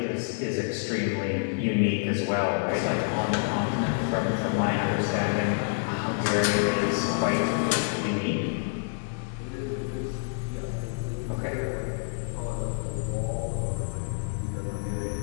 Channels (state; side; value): silent; right; digital silence